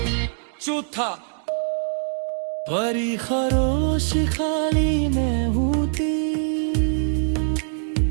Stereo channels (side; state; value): left; silent; digital silence